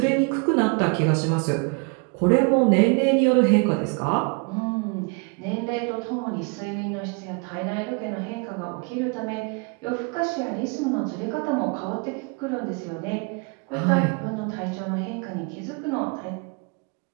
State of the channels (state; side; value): quieter; left; 33.3 dB